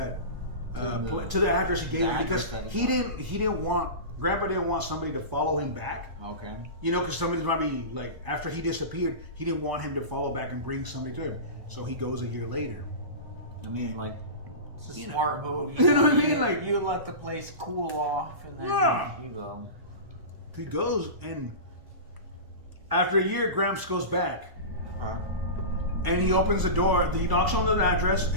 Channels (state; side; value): late; left; 1.0 ms